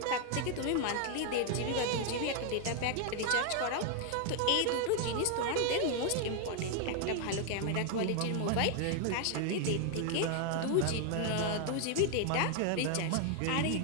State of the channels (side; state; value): both; different; correlation 0.00